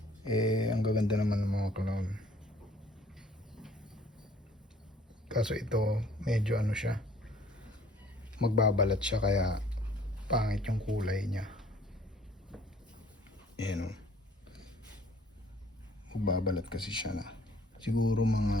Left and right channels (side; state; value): both; normal; correlation 0.55